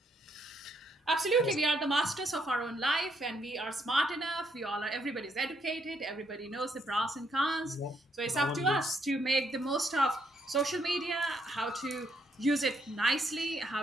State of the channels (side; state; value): both; normal; correlation 0.74